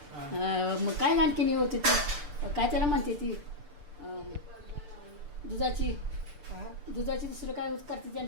मग काय आणखीन होती ती काय त्याला म्हणते ती दुधाची दुसरं काय करते ती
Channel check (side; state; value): left; late; 6.8 ms